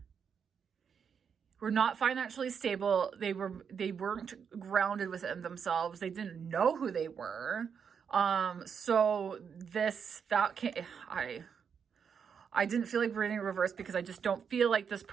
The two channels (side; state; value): left; quieter; 6.9 dB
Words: were not financially stable. They weren't grounded within themselves. They didn't know who they were. I didn't feel like reading reverse because I just don't feel like this